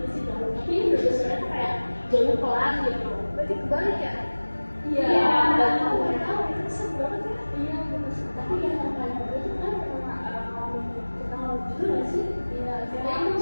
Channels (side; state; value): both; inverted; correlation -1.00